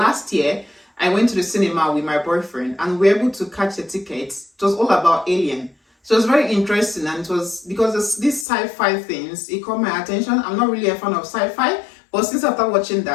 year, I went to the cinema with my boyfriend and we were able to catch a ticket. It was all about Alien. So it was very interesting, and it was because these sci-fi things, it caught my attention. I'm not really a fan of sci-fi. But since after watching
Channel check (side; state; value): right; drops out; at 8.5 s